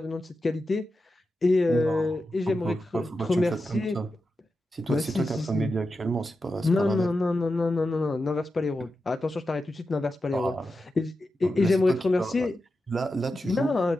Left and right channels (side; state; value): both; normal; correlation 0.90